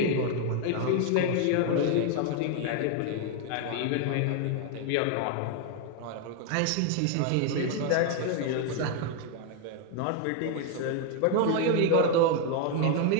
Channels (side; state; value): both; different; correlation 0.01